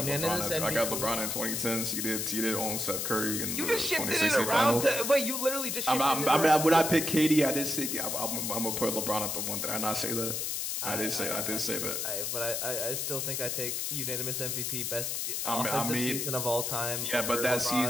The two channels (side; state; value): left; noise; hiss, 1 dB below the sound